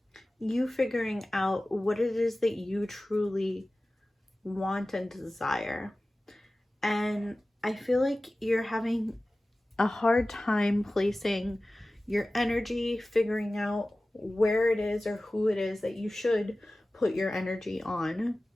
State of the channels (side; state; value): both; normal; correlation 0.97